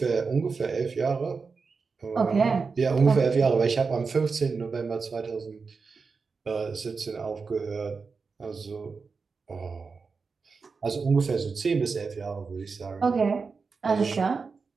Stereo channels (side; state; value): left; quieter; 4.8 dB